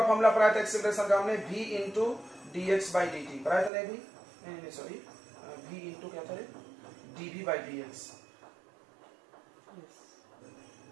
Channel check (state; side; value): drops out; left; at 3.7 s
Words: फॉर्मूला पढ़ाया था एक्सेलरेशन का हमने, v into dx by dt पढ़ाया था ना भी, नहीं सॉरी, v इंटू क्या था रे, dv बाय dx।